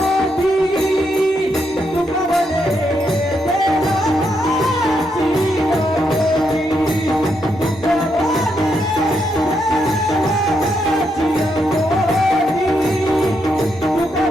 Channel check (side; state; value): both; normal; correlation 0.79